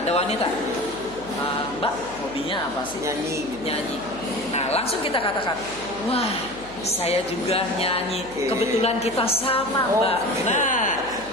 ada wanita, Mbak, hobinya apa sih? Nyanyi. Nah, langsung kita katakan, wah, saya juga nyanyi. Kebetulan kita sama, Mbak. Nah,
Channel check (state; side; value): noise; right; hum, 19 dB below the sound